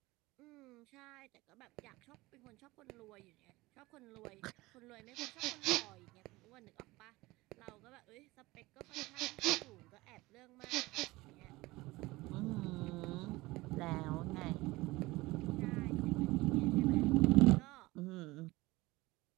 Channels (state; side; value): quieter; left; 20.6 dB